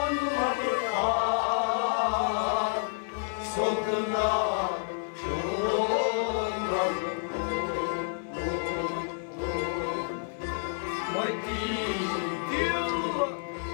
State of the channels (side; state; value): right; silent; digital silence